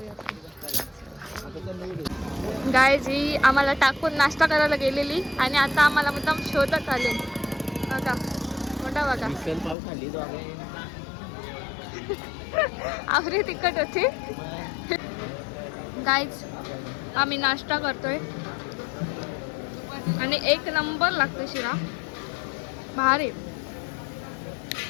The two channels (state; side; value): drops out; right; at 9.8 s